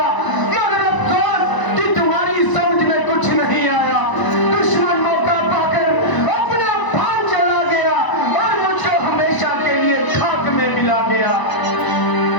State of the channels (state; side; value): late; right; 1.0 ms